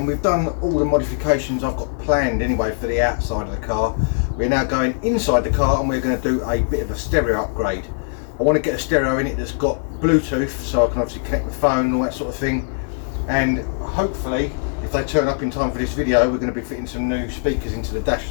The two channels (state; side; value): silent; right; digital silence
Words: we've done all the modifications I've got planned anyway for the outside of the car. We're now going inside the car and we're going to do a bit of a stereo upgrade. I want to get a stereo in it that's got Bluetooth so I can obviously connect my phone and all that sort of thing. And hopefully, if they turn up in time for this video, we're going to be fitting some new speakers into the dash